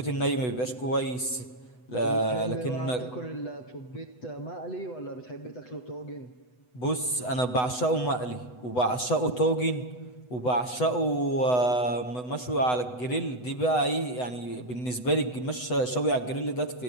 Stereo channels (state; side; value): late; right; 8.0 ms